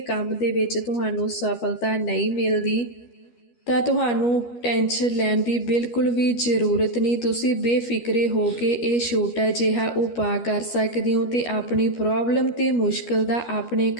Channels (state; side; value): late; right; 12 ms